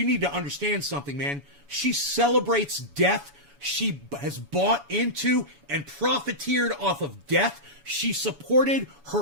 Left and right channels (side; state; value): left; late; 7.0 ms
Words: need to understand something, man. She celebrates death. She has bought into and profiteered off of death. She supported her